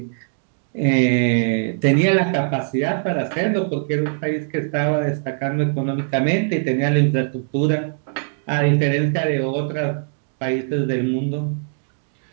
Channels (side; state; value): left; silent; digital silence